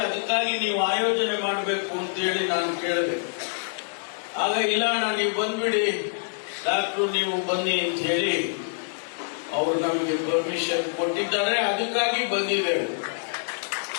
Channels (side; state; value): right; silent; 61 dB below the other